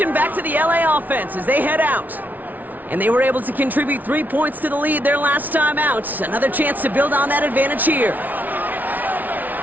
back to the LA offense as they head out. And they were able to contribute 3 points to the lead their last time out. Another chance to build on that advantage here.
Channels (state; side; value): late; left; 0.080 ms